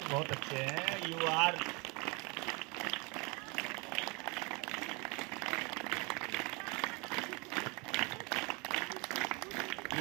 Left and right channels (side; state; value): left; quieter; 29.2 dB